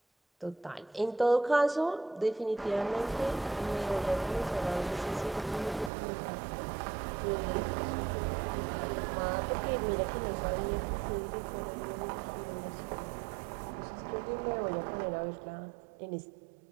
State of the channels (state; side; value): drops out; left; at 5.9 s